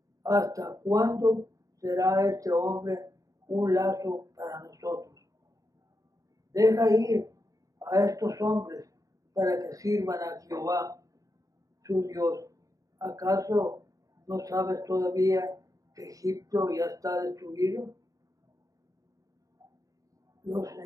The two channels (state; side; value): late; left; 0.16 ms